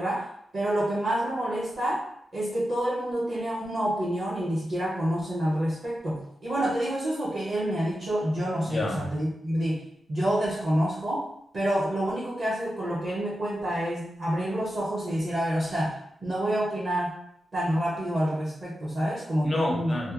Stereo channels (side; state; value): both; normal; correlation 0.90